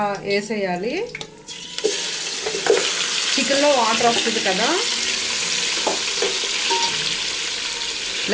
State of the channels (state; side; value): identical; both; correlation 1.00